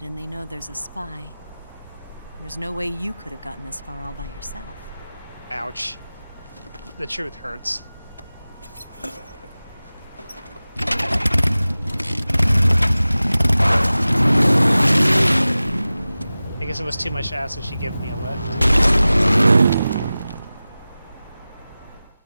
and they know there's a spy. There's no way you could have gotten this far all by yourself. Ouch. The truth hurts. I guess it was too much to ask if she gave me a lift.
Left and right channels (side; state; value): both; inverted; correlation -0.97